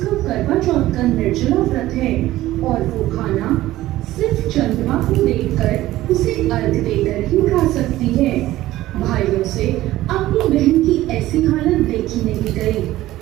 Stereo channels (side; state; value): left; quieter; 15.7 dB